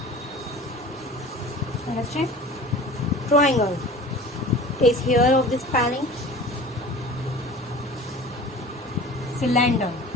understand. Triangle is here of this spelling. Cylinder,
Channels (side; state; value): both; normal; correlation 0.40